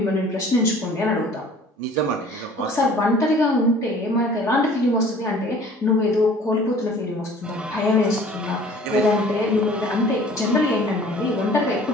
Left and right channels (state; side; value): normal; both; correlation 0.49